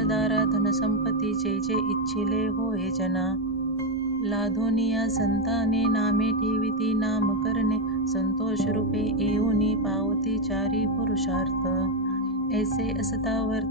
धनसंपत्ती जे जे इच्छिले होय जना लाधोनिया संताने नामे ठेविती नाम करणे संतोष रूपे येऊनी पावती चारी पुरुषार्थ ऐसे असता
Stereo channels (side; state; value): both; normal; correlation 0.07